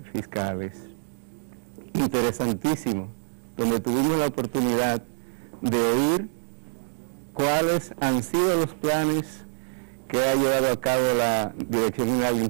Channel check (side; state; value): left; silent; digital silence